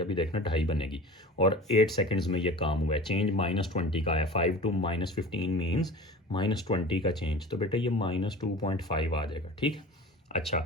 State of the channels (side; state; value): both; normal; correlation 0.38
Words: देखना 2.5 बनेगी। और 8 सेकंड्स में ये काम हुआ है, चेंज -20 का है। 5 to -15 मीन्स -20 का चेंज, तो बेटे ये -2.5 आ जाएगा, ठीक है। अच्छा,